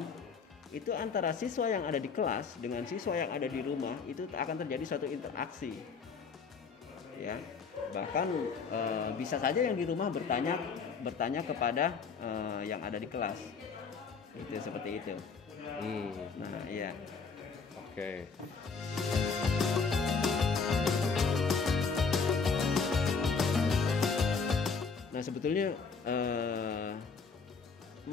itu antara siswa yang ada di kelas dengan siswa yang ada di rumah itu akan terjadi suatu interaksi ya. Bahkan bisa saja yang di rumah bertanya kepada yang ada di kelas, itu seperti itu. Nah iya. Oke. Nah sebetulnya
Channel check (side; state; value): right; quieter; 5.3 dB